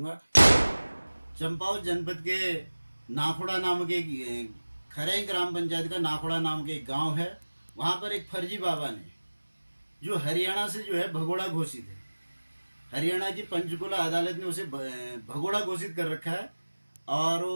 चंपावत जनपद के नाखुड़ा नाम के खरई ग्राम पंचायत का नाखुड़ा नाम के एक गांव है। वहां पर एक फर्जी बाबा ने, जो हरियाणा से जो है भगोड़ा घोषित है, हरियाणा की पंचकुला अदालत ने उसे भगोड़ा घोषित कर रखा है। और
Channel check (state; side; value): inverted; both; correlation -1.00